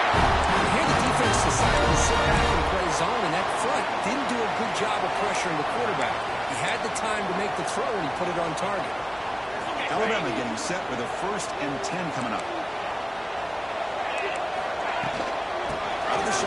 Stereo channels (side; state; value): both; identical; correlation 1.00